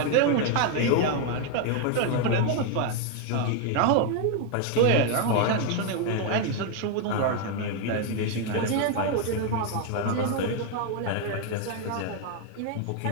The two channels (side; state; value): both; different; correlation 0.00